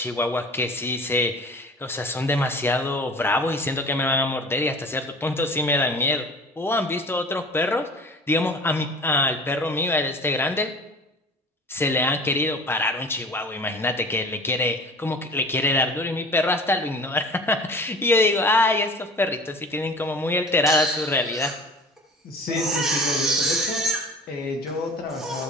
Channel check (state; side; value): normal; both; correlation 0.42